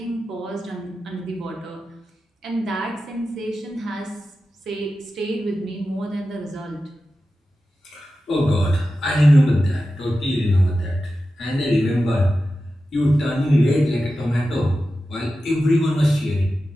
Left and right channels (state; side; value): normal; both; correlation 0.93